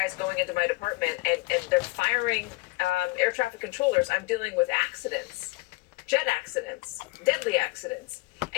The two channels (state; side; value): quieter; right; 23.5 dB